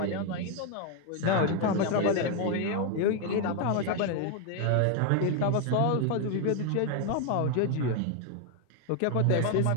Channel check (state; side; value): different; both; correlation 0.01